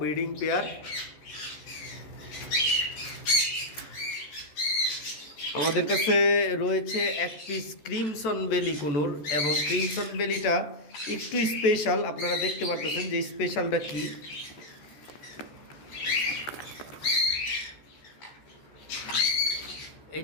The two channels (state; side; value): late; right; 14 ms